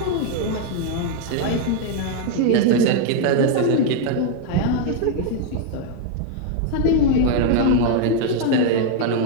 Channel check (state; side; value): different; both; correlation 0.00